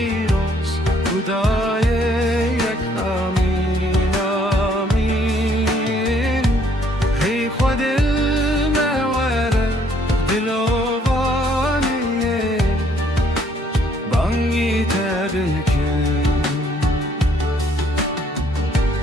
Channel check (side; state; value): both; normal; correlation 0.65